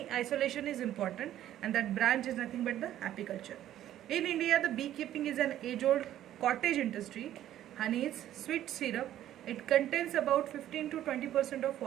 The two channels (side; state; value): left; quieter; 12.3 dB